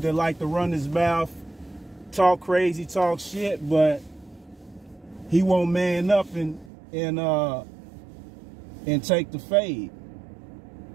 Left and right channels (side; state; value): left; drops out; at 6.7 s